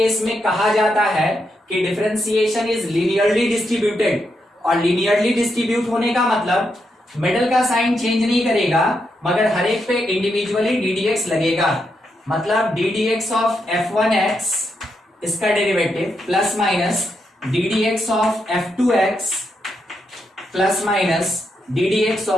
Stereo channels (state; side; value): normal; both; correlation 0.82